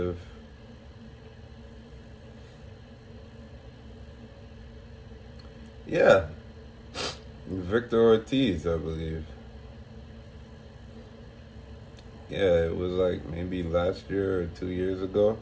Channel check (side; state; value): both; identical; correlation 1.00